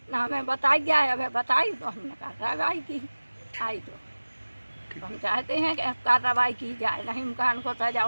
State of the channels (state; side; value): inverted; both; correlation -1.00